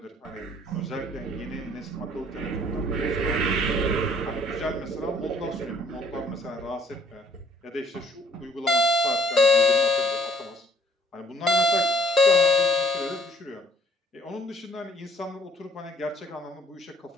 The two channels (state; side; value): normal; both; correlation 0.61